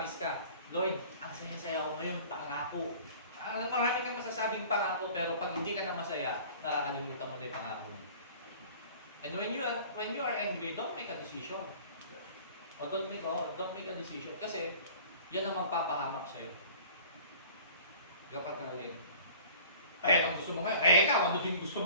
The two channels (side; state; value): both; inverted; correlation -0.46